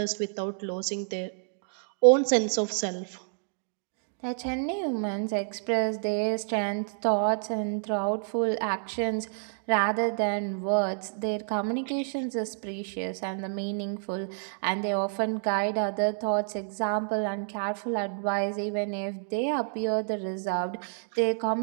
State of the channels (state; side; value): silent; left; digital silence